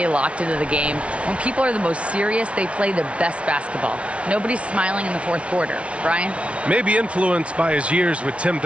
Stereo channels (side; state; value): left; late; 0.061 ms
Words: locked into the game. When people are the most serious, they play the best basketball. Nobody's smiling in the fourth quarter." Brian? Maybe influenced by his years with Tim